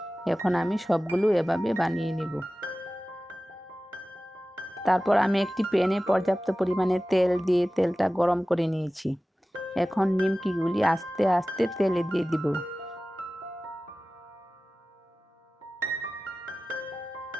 এখন আমি সবগুলো এভাবে বানিয়ে নেব। তারপর আমি একটি প্যানে পর্যাপ্ত পরিমাণে তেল দিয়ে তেলটা গরম করে নিয়েছি। এখন নিমকিগুলি আস্তে আস্তে তেলে দিয়ে দিব।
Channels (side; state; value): both; normal; correlation 0.96